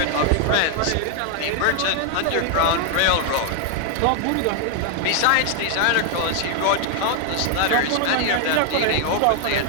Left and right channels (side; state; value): both; different; correlation 0.00